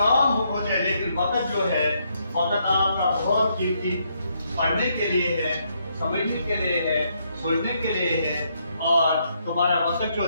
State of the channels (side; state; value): both; inverted; correlation -0.75